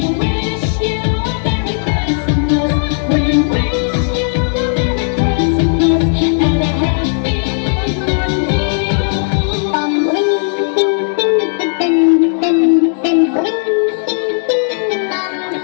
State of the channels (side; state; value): right; silent; digital silence